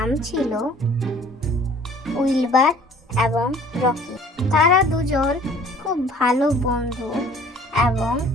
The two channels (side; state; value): both; normal; correlation 0.51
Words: ছিল উইলবার এবং রকি। তারা দুজন খুব ভালো বন্ধু এবং